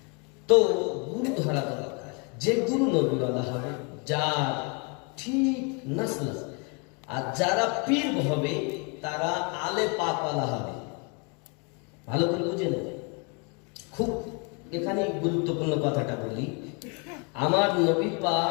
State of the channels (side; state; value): right; quieter; 33.4 dB